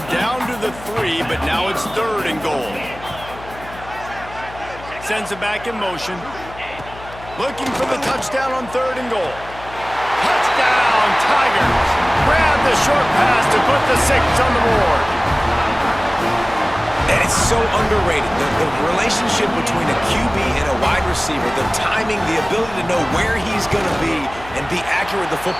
down to the 3, but now it's 3rd and goal. Sends it back in motion. Looking for the touchdown on 3rd and goal. Touchdown, Tigers! Grab the short pass to put the 6 on the board. And it's so underrated. The relationship between a QB and a wide receiver, the timing, the ability to know where he's going to be and be accurate with the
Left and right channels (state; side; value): noise; left; hum, 17 dB below the sound